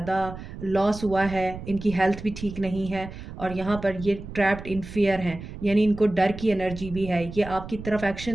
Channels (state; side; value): noise; right; rumble, 12 dB below the sound